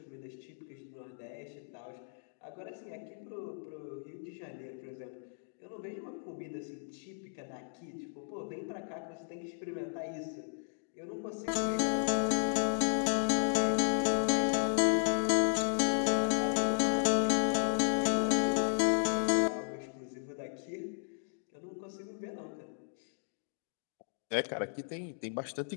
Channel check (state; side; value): silent; right; digital silence